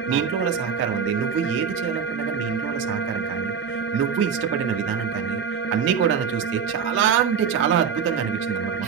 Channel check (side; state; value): left; quieter; 6.8 dB